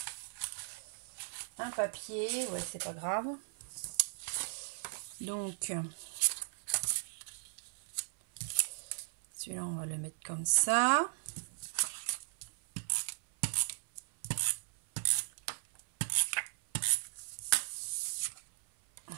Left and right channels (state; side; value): silent; left; 53 dB below the other